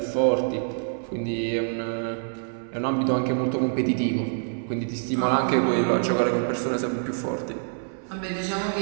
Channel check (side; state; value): left; silent; 61 dB below the other